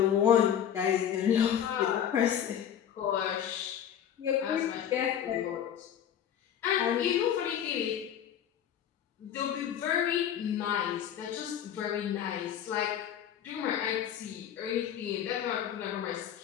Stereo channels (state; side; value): quieter; right; 9.5 dB